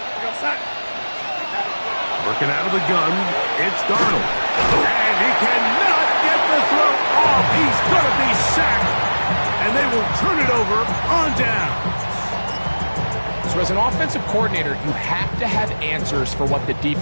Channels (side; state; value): both; inverted; correlation -1.00